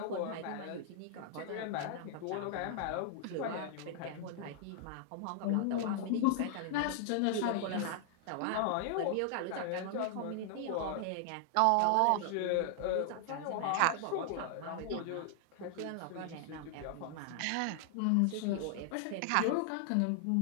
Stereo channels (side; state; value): both; different; correlation 0.00